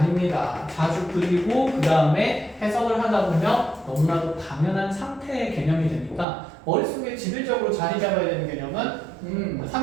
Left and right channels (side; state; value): left; drops out; at 6.2 s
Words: 자주 그리고 그 다음에 해석을 하다 보면 너무나도 당연한 상태의 개념이 되니까 머릿속에 지배적으로 자리 잡아야 되는 개념은